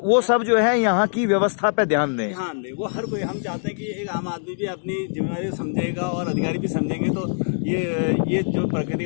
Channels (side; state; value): right; silent; digital silence